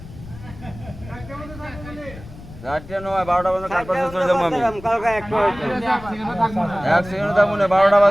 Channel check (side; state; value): left; noise; rumble, 16 dB below the sound